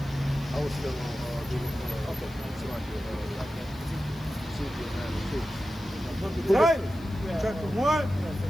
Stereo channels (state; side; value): noise; left; hiss, 24 dB below the sound